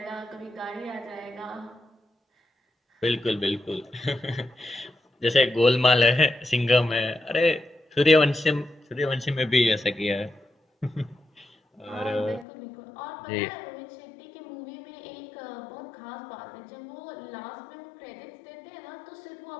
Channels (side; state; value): right; drops out; at 12.5 s